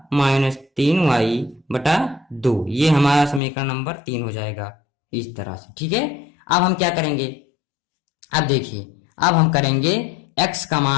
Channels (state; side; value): drops out; right; at 3.4 s